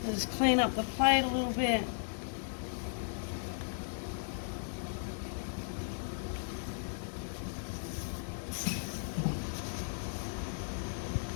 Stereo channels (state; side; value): silent; right; digital silence